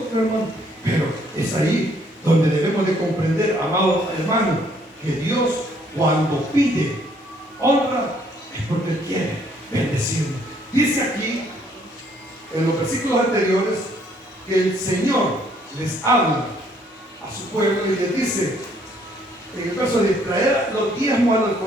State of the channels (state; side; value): normal; both; correlation 0.65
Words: hermano. Pero es ahí donde debemos de comprender, amados hermanos, que Dios, cuando pide honra, es porque Él quiere bendecirnos. Dice aquí en los versículos anteriores que el Señor les habla a su pueblo y les dice en el verso de traer los diezmos al